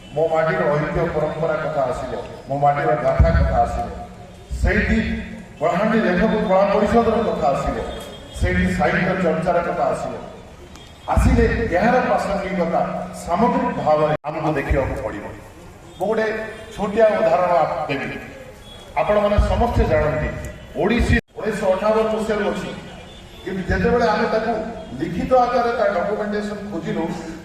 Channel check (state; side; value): identical; both; correlation 1.00